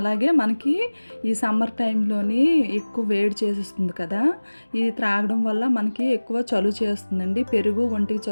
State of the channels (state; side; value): inverted; both; correlation -1.00